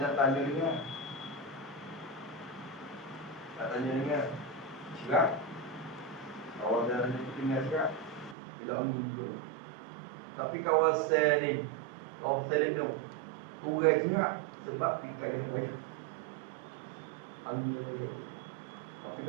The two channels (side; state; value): left; drops out; at 8.3 s